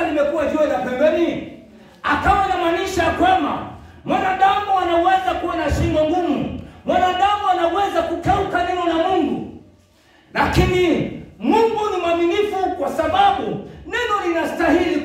limekuwa jiwe la pembeni? Akawa anamaanisha kwamba mwanadamu anaweza kuwa na shingo ngumu, mwanadamu anaweza kukeuka neno la Mungu, lakini Mungu ni mwaminifu, kwa sababu neno linastahili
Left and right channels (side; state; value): both; identical; correlation 1.00